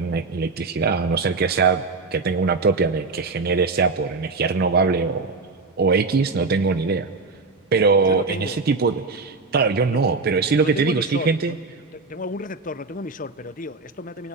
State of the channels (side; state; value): left; quieter; 4.0 dB